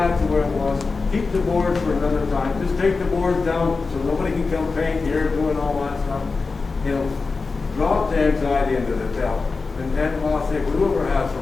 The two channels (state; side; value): quieter; right; 4.2 dB